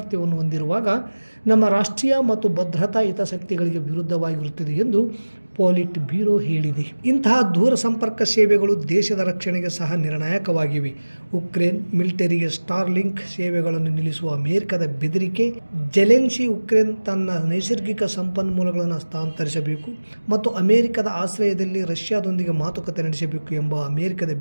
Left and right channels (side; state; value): both; inverted; correlation -1.00